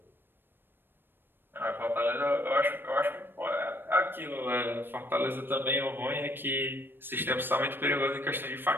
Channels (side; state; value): left; late; 0.098 ms